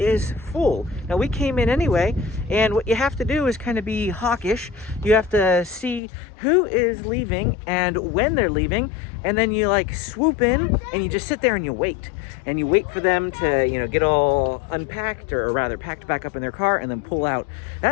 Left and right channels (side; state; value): right; drops out; at 6.0 s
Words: full. Now we came in anyway, and what you have to do is kind of be hawkish. You have to see who is leaving and when they're leaving, and then you like swoop in and you just sit there and you wait for them to, you know, get all unpacked, or rather packed back up in their car and then pull out.